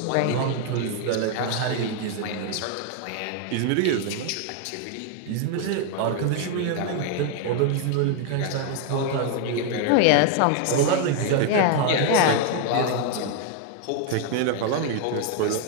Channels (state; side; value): different; both; correlation 0.00